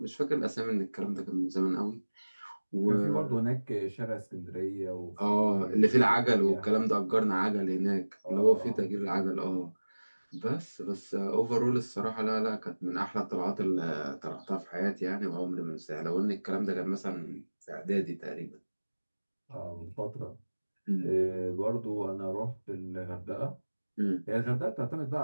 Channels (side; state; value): both; inverted; correlation -1.00